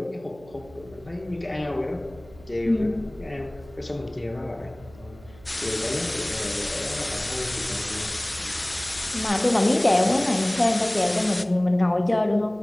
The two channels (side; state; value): right; noise; hum, 23 dB below the sound